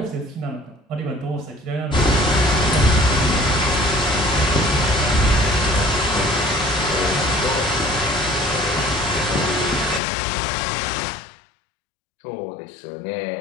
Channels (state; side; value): drops out; right; at 10.0 s